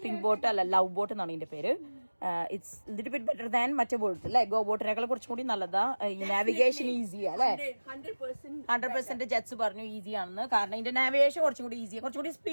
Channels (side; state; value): both; inverted; correlation -1.00